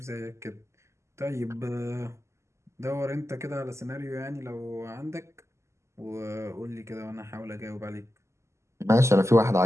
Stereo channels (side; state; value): left; late; 0.13 ms